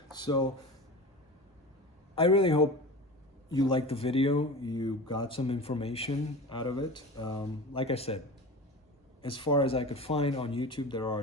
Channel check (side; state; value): both; normal; correlation 0.32